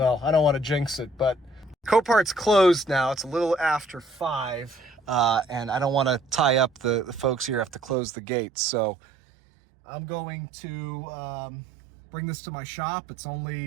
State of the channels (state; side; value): drops out; left; at 8.0 s